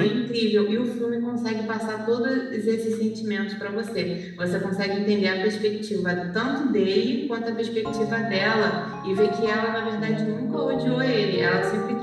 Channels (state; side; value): identical; both; correlation 1.00